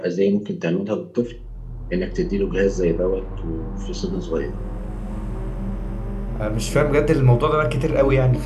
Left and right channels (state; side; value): identical; both; correlation 1.00